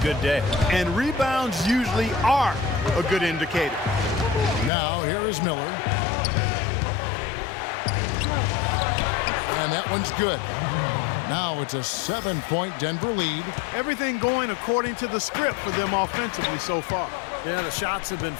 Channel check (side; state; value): right; drops out; at 4.7 s